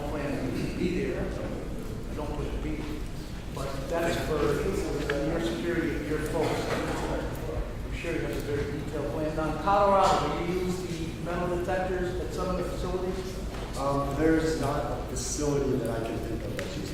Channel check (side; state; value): both; identical; correlation 1.00